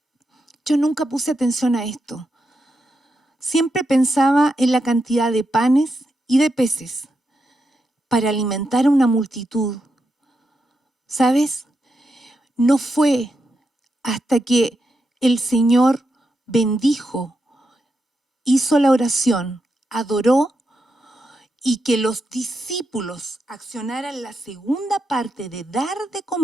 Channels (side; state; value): both; normal; correlation 0.85